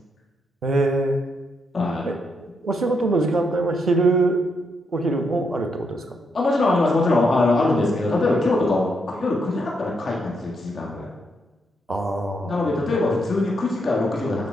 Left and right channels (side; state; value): both; normal; correlation 0.79